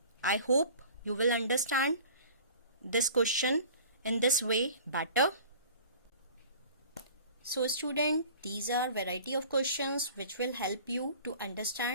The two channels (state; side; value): inverted; both; correlation -0.46